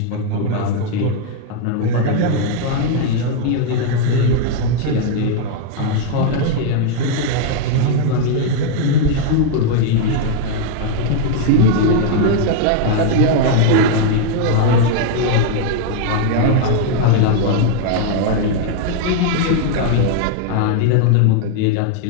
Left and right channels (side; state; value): both; different; correlation 0.00